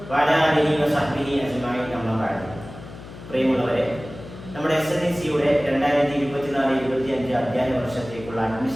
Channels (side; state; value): left; noise; hum, 15 dB below the sound